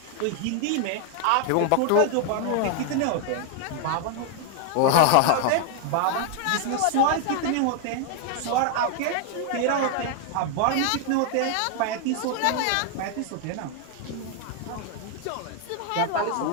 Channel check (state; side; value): different; both; correlation 0.00